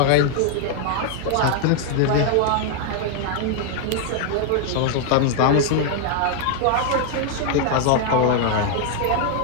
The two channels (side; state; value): both; different; correlation 0.00